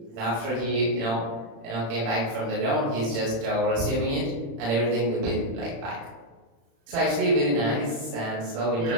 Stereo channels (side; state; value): left; late; 35 ms